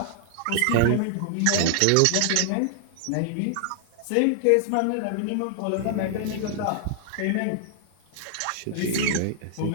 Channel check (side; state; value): both; different; correlation 0.00